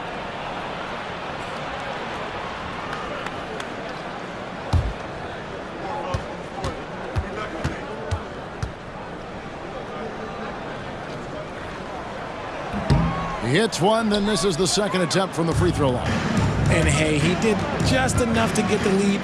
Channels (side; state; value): both; identical; correlation 1.00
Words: He hits one, then this is the second attempt from the free throw line. And hey, he did just enough to get the lead.